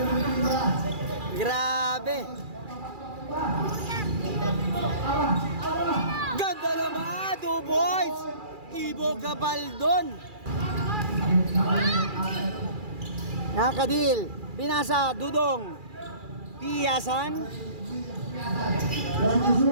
Grabe. Ganda naman, 2 boys. Ibo Gabaldon. Nakadil. Pinasa, Dudong. Piyasan. Time to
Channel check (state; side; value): late; left; 2.4 ms